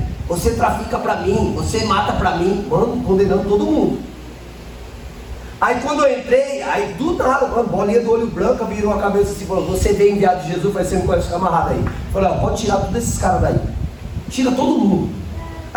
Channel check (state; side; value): identical; both; correlation 1.00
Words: você trafica pra mim, você mata pra mim, mano, condenando todo mundo. Aí quando eu entrei, aí do nada, mano, bolinha do olho branco, virou a cabeça assim, falou, você veio enviado de Jesus, vai ser um camarada aí. Falei, ó, pode tirar todos esses caras daí, tira todo mundo.